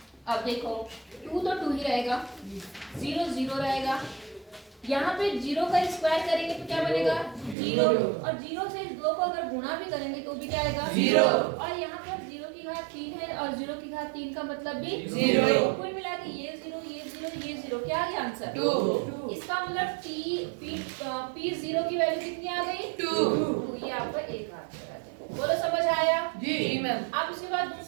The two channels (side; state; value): left; drops out; at 7.6 s